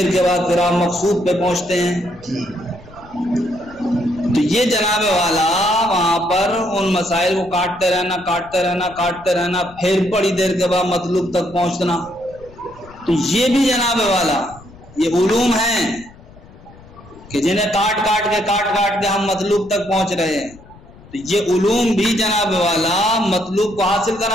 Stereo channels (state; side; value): noise; left; rumble, 22 dB below the sound